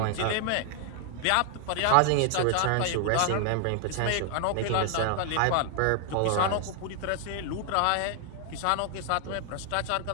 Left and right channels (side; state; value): both; different; correlation 0.00